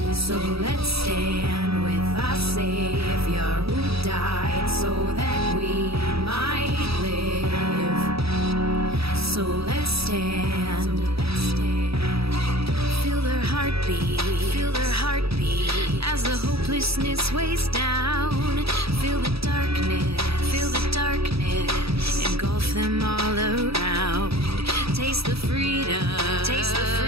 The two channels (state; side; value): late; left; 0.77 ms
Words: so let's stand with our Savior who died so that we might live. So let's stand, feel their heartbeat, as the hopelessness weighs down. Feel the darkness, engulf them all around. Taste the freedom,